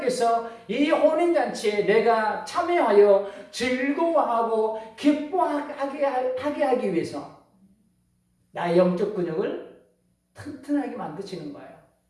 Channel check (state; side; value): identical; both; correlation 1.00